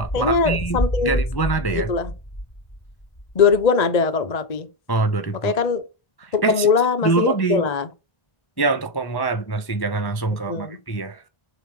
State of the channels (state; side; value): late; right; 1.1 ms